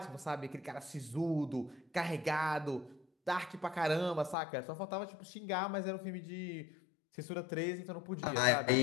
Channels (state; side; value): drops out; right; at 4.4 s